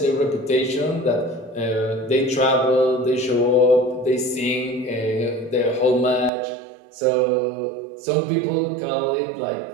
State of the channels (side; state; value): left; drops out; at 6.3 s